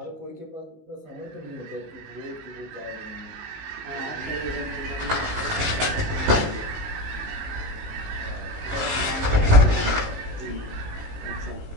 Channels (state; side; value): late; left; 19 ms